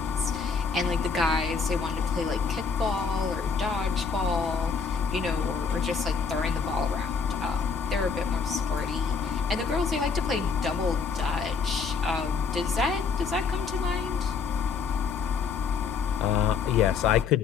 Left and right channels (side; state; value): right; quieter; 5.4 dB